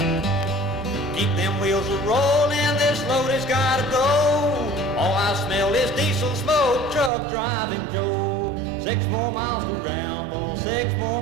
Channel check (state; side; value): drops out; left; at 7.1 s